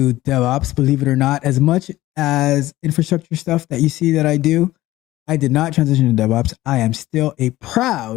DevOps, believe it or not, as much as infrastructure stuff that you see that I do. I did not transition to DevOps. I am still a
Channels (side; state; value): right; quieter; 16.4 dB